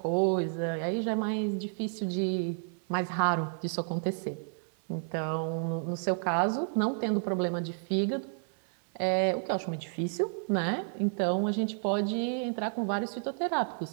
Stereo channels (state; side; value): silent; left; 57 dB below the other